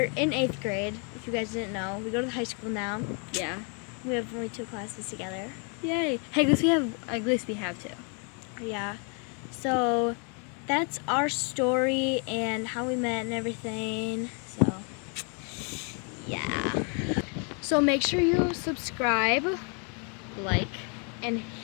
in 8th grade, if you guys didn't know. We go to high school now. Yeah. We have only 2 classes together. Yay. Hey, at least we have two. Yeah. So that's our story and how we met and everything. So yeah. So make sure you subscribe Like. and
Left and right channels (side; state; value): right; quieter; 38.0 dB